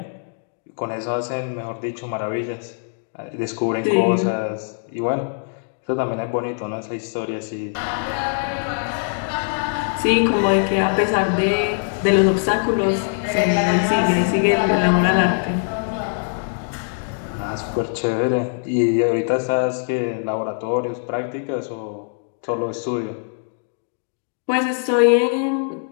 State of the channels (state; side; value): silent; right; digital silence